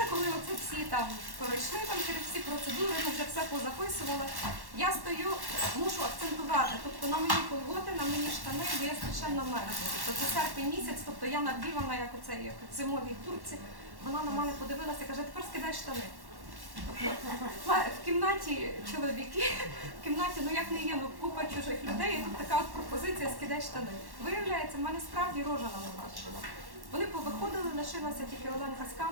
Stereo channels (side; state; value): left; late; 1.1 ms